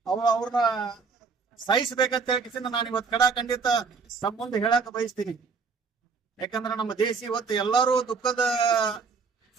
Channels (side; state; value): left; quieter; 5.1 dB